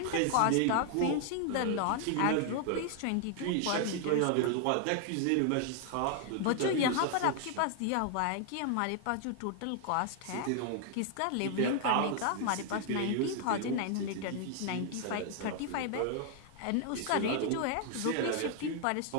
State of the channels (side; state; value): both; different; correlation 0.00